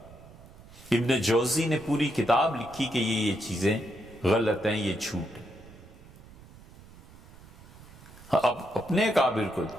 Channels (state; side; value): noise; right; rumble, 21 dB below the sound